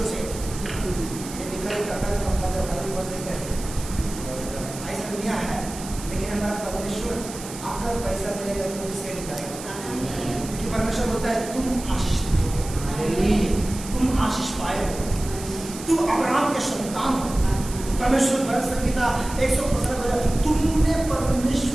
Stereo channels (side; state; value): right; noise; hiss, 12 dB below the sound